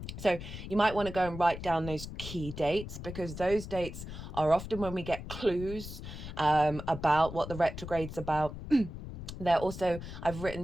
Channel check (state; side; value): noise; left; rumble, 10 dB below the sound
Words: So you might want to go and write down those key dates, because those dates are often when we get clues about what the retrograde's about. They're also, I've